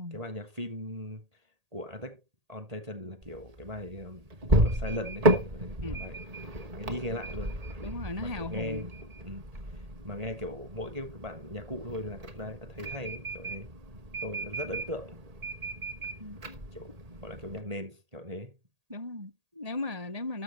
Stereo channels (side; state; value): left; late; 1.8 ms